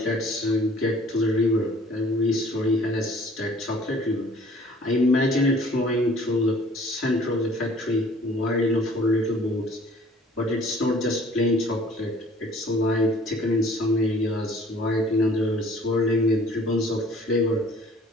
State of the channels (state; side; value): normal; both; correlation 0.54